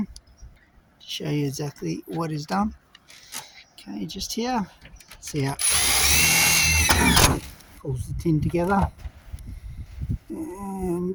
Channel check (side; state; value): both; identical; correlation 1.00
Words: to show you exactly what is done. Okay, just here. See how it pulls the tin together.